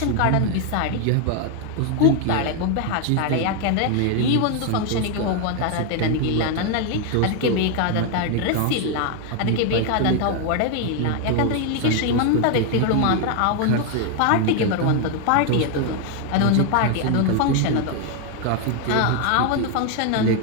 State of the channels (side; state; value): both; different; correlation 0.01